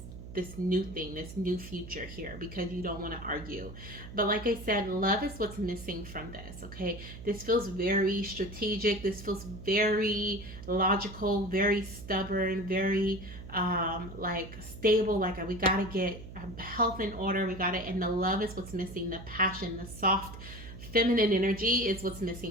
new thing, this new future here, because you don't want to argue. But like I said, love is what's missing from this. Okay, this feels very strategic, this feels very logical, very stubborn, very like stable, like we got to get health in order, we got it. And the love is what's missing, the passion, the soft feminine energy is what's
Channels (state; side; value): noise; right; hum, 13 dB below the sound